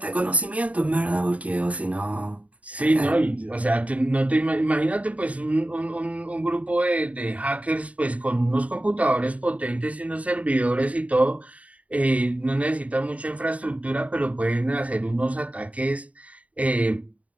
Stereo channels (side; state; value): left; late; 0.068 ms